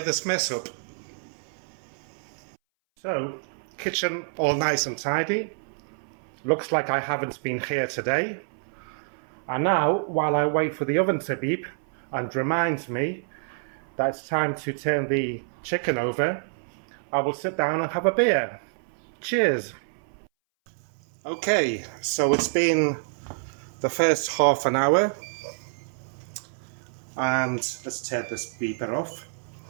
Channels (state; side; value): silent; left; 60 dB below the other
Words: this mess up. So, kitchen all nice and tidy. Looks like I haven't been here today. And now, while I wait for the oven to beep and reminds me that it's time to turn the chicken over, I will sit down and have a beer. Cheers! Okay, so it's been the first half an hour, and let's turn this beeper off.